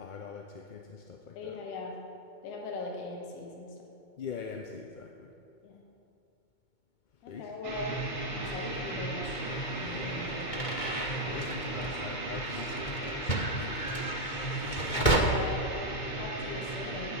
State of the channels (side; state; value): right; late; 2.2 ms